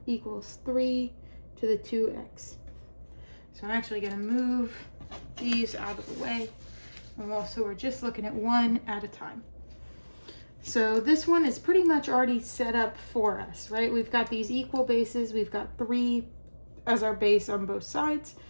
equals 3 to the 2x. So I'm actually going to move these out of the way. And also we're just looking at one at a time. So this one is pretty much already set up for us, right? We've got these equal bases. We've got 3 as our base on both sides.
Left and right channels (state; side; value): inverted; both; correlation -1.00